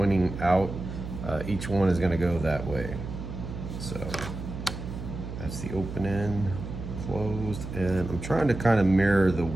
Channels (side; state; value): right; noise; hum, 8 dB below the sound